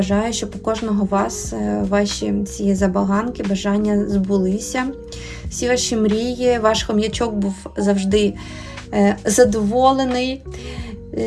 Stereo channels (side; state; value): both; identical; correlation 1.00